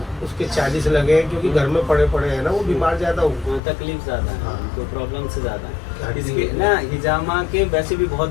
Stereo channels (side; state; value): right; drops out; at 3.6 s